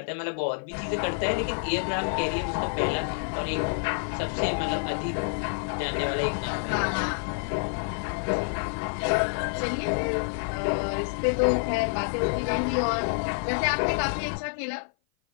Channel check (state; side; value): silent; right; 55 dB below the other